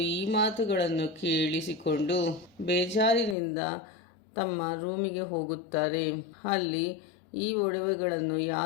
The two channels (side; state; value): right; drops out; at 3.4 s